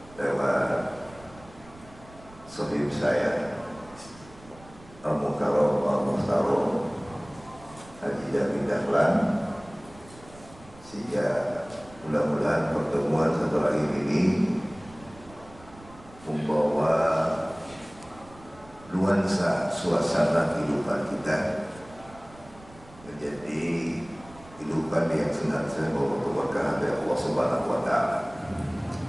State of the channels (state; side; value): noise; right; rumble, 22 dB below the sound